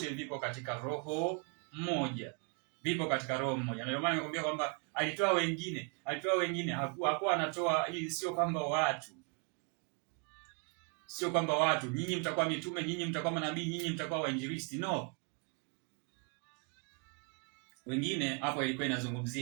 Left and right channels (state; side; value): quieter; left; 36.2 dB